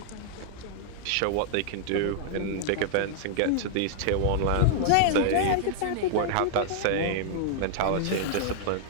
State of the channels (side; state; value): both; different; correlation -0.01